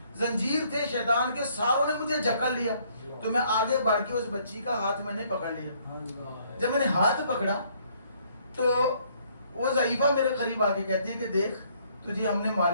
زنجیر تھے شیطان کے ساروں نے مجھے جکڑ لیا. تو میں آگے بڑھ کے اس بچی کا ہاتھ میں نے پکڑ لیا. جب میں نے ہاتھ پکڑا تو وہ ضعیفہ میرے قریب آ کے کہتی ہے کہ دیکھ تجھے ہم نے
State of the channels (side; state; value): both; inverted; correlation -0.65